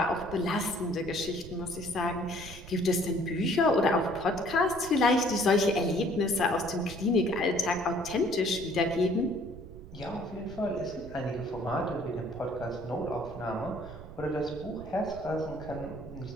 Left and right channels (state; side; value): noise; right; rumble, 14 dB below the sound